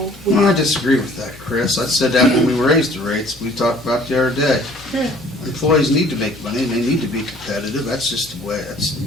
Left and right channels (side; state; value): both; normal; correlation 0.54